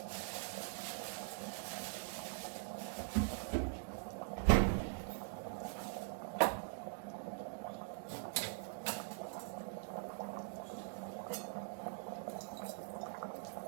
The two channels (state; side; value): silent; left; digital silence